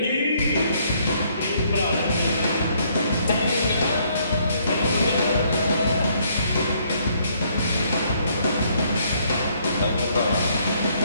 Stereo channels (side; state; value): both; inverted; correlation -0.67